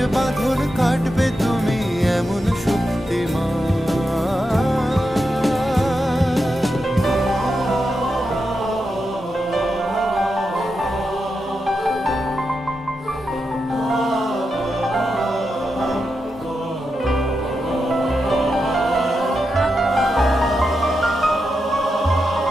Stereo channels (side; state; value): both; normal; correlation 0.87